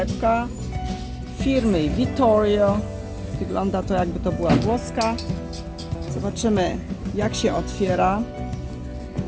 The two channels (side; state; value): both; identical; correlation 1.00